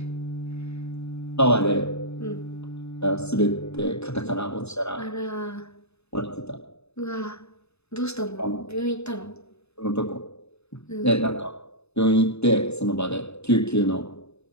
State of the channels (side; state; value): right; late; 0.80 ms